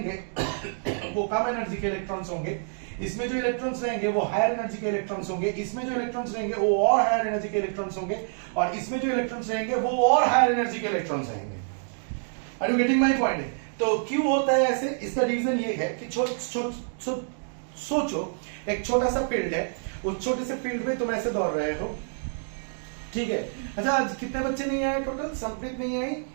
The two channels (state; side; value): silent; left; digital silence